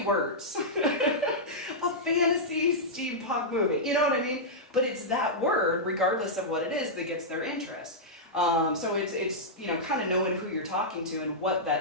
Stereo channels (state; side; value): normal; both; correlation -0.09